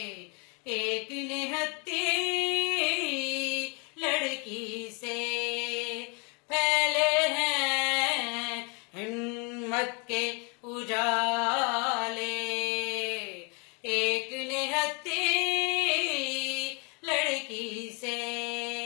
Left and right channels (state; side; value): quieter; right; 32.5 dB